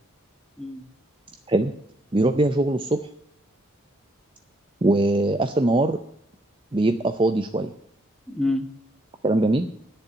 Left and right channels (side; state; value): both; normal; correlation 0.72